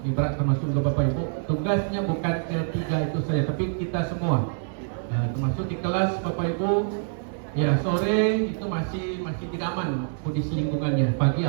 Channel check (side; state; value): left; silent; digital silence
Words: berat termasuk juga Bapak Ibu. Tugasnya bukan ketiga itu saja, tapi kita semua, termasuk di kelas Bapak Ibu. Ya sore itu masih tidak aman kondisi lingkungannya, pagi